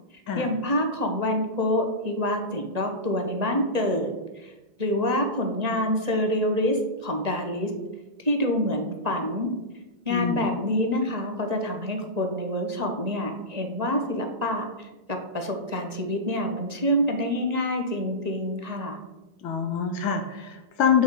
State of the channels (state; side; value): late; left; 1.9 ms